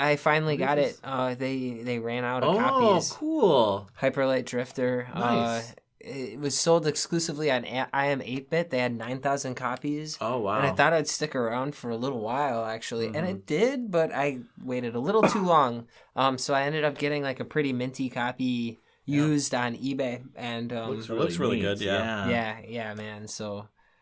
finally got it. They ran out of copies. Cool. Hyperlight Drifter. Nice. It was sold exclusively on IM 8-bit. They had 9,000 copies. Oh wow. And I thought I'd stick around for a little while, actually. And it did, but I waited a little too long. So I ended up getting like a pretty minty copy used on eBay. And Looks really neat. good, yeah. yeah, man. So,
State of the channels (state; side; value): identical; both; correlation 1.00